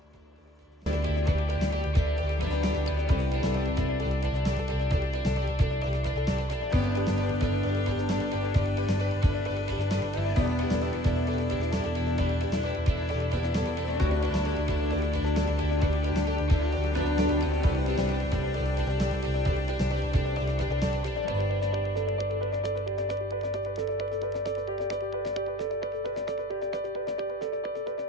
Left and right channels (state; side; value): normal; both; correlation 0.57